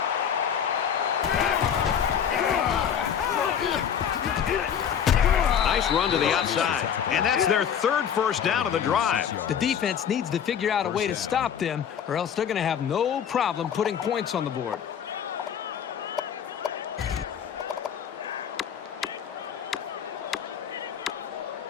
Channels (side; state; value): right; quieter; 8.3 dB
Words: Nice run to the outside. And that's their third first down of the drive. The defense needs to figure out a way to stop them, or else they're going to have no problem putting points on the board.